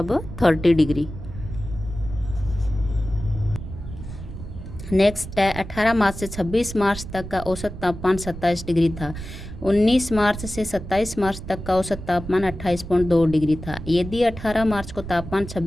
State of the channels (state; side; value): noise; right; rumble, 10 dB below the sound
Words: 30 डिग्री। नेक्स्ट है 18 मार्च से 26 मार्च तक का औसत तापमान 27 डिग्री था। 19 मार्च से 27 मार्च तक का औसत तापमान 28.2 डिग्री था। यदि 18 मार्च को तापमान